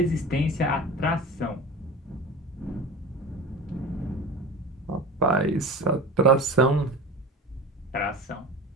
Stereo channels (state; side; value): normal; both; correlation 0.33